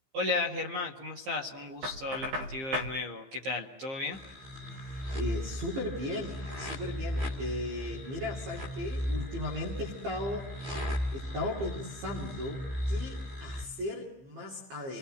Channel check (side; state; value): left; late; 15 ms